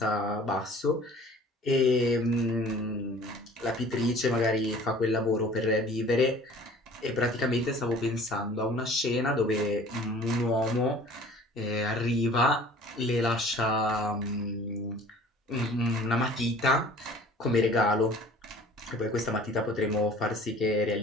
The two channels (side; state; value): both; normal; correlation 0.48